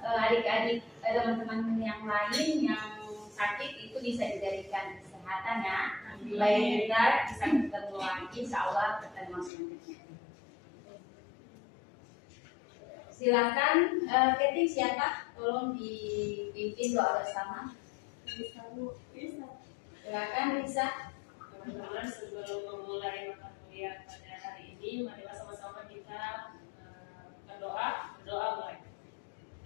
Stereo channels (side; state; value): right; drops out; at 9.5 s